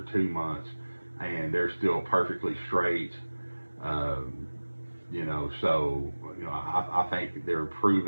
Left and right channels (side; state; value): both; inverted; correlation -1.00